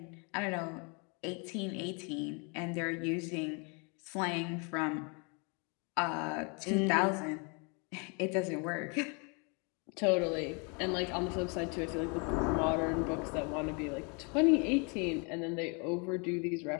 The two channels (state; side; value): quieter; right; 34.0 dB